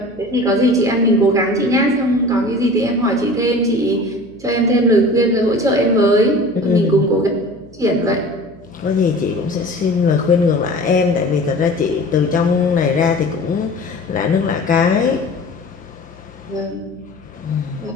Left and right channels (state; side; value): noise; left; hum, 25 dB below the sound